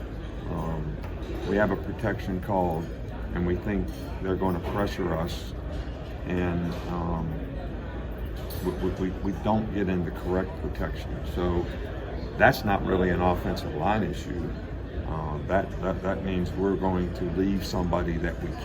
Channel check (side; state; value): both; identical; correlation 1.00